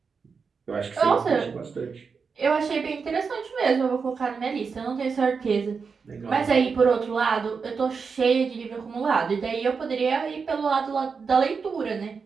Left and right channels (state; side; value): quieter; left; 5.4 dB